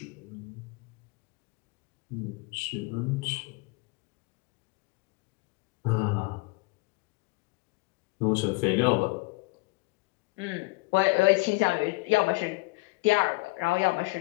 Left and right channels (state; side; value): quieter; right; 25.6 dB